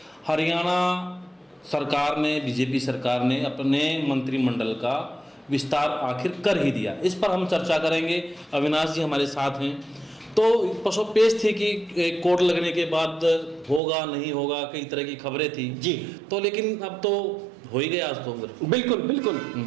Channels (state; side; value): drops out; left; at 13.8 s